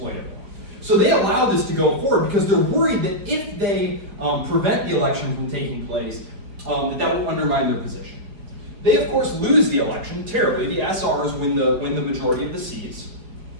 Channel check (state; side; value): late; left; 4.8 ms